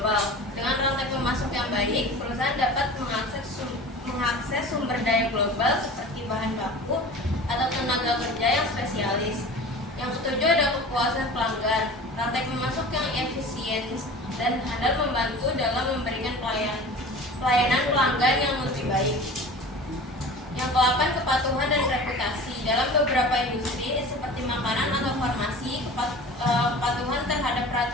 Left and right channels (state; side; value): normal; both; correlation 0.38